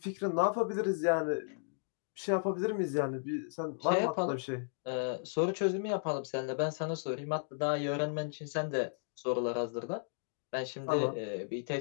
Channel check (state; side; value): silent; right; digital silence